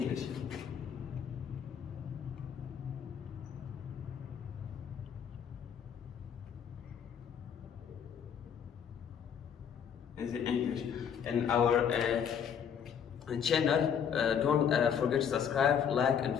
Easy English. And our channel, don't forget to subscribe, like and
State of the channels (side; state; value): right; quieter; 7.9 dB